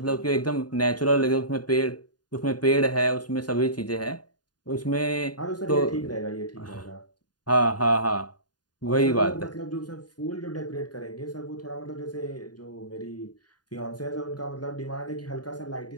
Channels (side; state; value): right; late; 0.70 ms